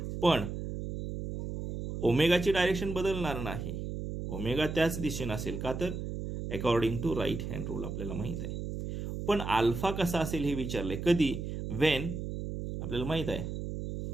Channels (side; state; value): right; noise; hum, 5 dB below the sound